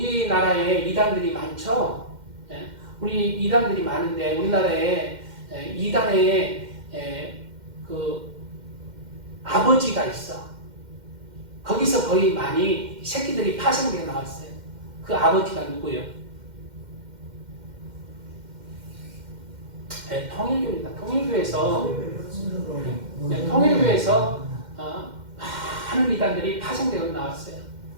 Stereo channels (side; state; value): left; late; 2.1 ms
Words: 이단들이 많죠. 우리 이단들이 많은데 우리나라에 이단의 그 아버지가 있어. 거기서 거의 많이 새끼들이 파생되어 나왔어요. 그 아버지가 누구예요? 통일교입니다. 통일교에서 많은 이단들이 파생되어 나왔어요.